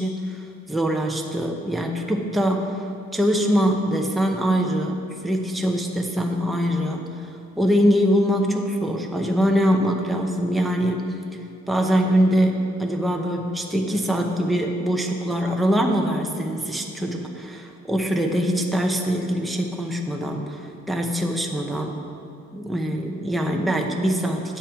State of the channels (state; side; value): normal; both; correlation 0.80